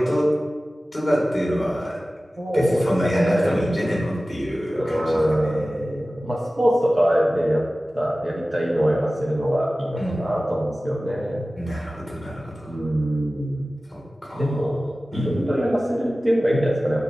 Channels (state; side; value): normal; both; correlation 0.96